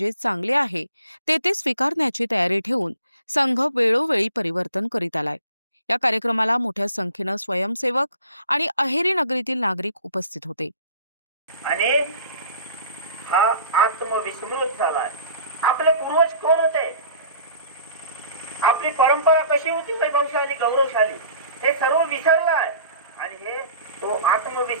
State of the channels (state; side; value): inverted; both; correlation -0.48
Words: चांगले आहे ते स्वीकारण्याची तयारी ठेवून संघ वेळोवेळी परिवर्तन करीत आलाय। या कार्यक्रमाला मोठ्या संख्येने स्वयंसेवक आणि अहेरी नगरीतील नागरिक उपस्थित होते। आणि हा आत्मविस्मृत झालाय। आपले पूर्वज कोण होते, आपली परंपरा कशी होती, वैभवशाली, गौरवशाली, हे सर्व विसरलाय। आणि हे तो